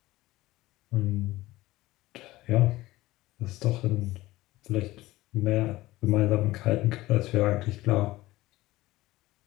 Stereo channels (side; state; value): right; quieter; 18.0 dB